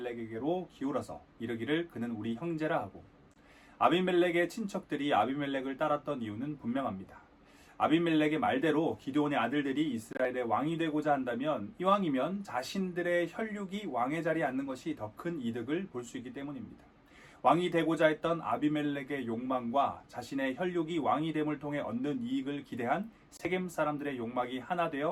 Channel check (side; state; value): both; identical; correlation 1.00